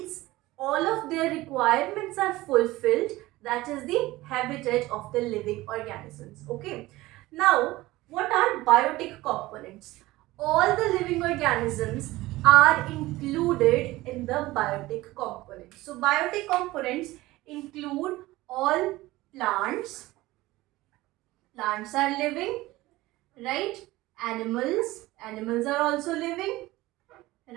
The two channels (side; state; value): left; quieter; 18.5 dB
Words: all of their requirements are fulfilled. That is the habitat of the living organisms. Okay. Now, what are biotic components? All the living organisms are included in the biotic components. So, biotic components include all plants. Plants are living, right? Animals are also living,